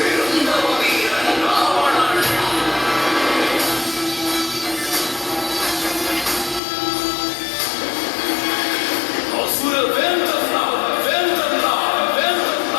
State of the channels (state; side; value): drops out; right; at 6.6 s